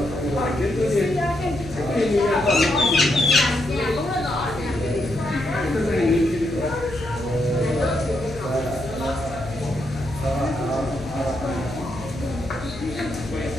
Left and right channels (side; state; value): left; noise; hum, 13 dB below the sound